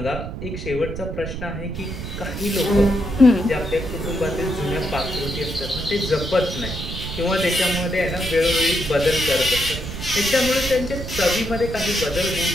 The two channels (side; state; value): right; noise; rumble, 7 dB below the sound